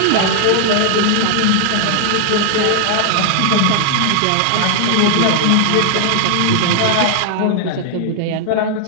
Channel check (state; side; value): different; both; correlation 0.00